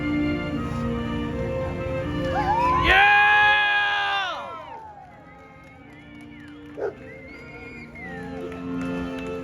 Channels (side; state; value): both; identical; correlation 1.00